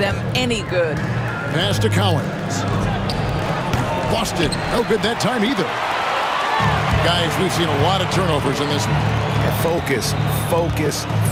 any good. Pass to Collins. Busted. No good that time either. Guys, we've seen a lot of turnovers in this one. Focus, focus,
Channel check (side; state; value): both; identical; correlation 1.00